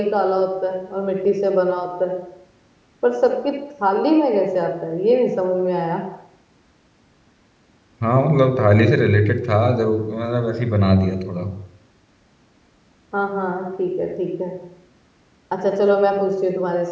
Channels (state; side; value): identical; both; correlation 1.00